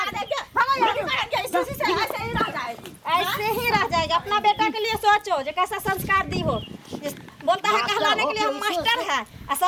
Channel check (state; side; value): identical; both; correlation 1.00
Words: ऐसे ही रह जाएगा। अपना बेटा के लिए सोचो जो कैसा संस्कार दी हो। बोलता है कहलाने के लिए हम मास्टर है और